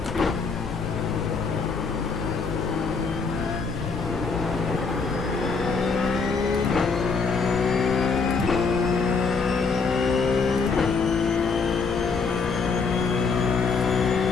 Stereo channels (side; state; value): right; quieter; 4.8 dB